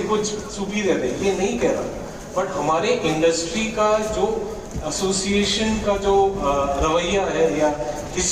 कुछ सुपीरियर है, ये नहीं कह रहा। बट हमारे इंडस्ट्री का जो एसोसिएशन का जो रवैया है या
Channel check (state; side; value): identical; both; correlation 1.00